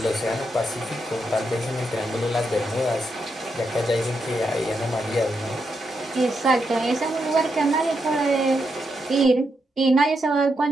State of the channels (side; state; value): both; normal; correlation 0.82